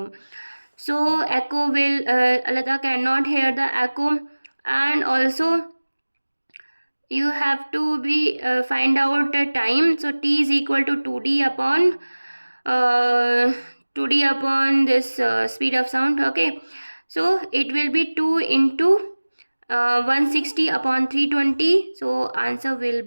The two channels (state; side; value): inverted; both; correlation -1.00